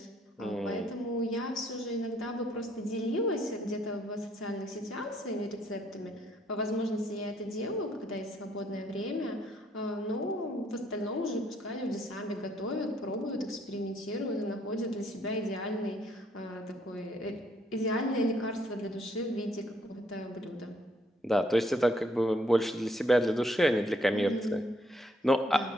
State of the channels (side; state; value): both; normal; correlation 0.68